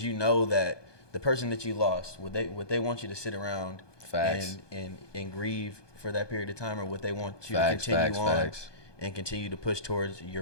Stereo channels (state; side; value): late; right; 1.2 ms